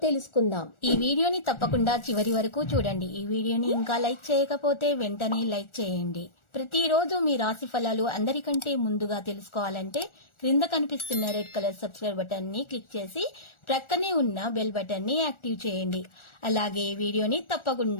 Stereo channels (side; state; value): right; late; 1.4 ms